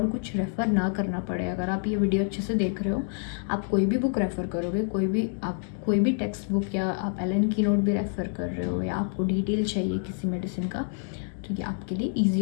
कुछ रेफ़र ना करना पड़े। अगर आप ये वीडियो अच्छे से देख रहे हो, आप कोई भी बुक रेफ़र करोगे, कोई भी टेक्स्ट बुक, या आप एलन की नोट भी रेफ़र कर रहे हो, या आपको डिटेल चाहिए किसी मेडिसिन का, तो ये आपके लिए ईजी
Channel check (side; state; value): right; silent; 59 dB below the other